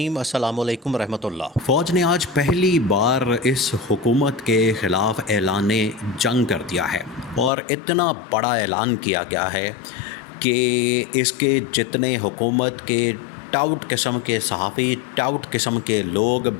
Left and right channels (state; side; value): drops out; right; at 7.5 s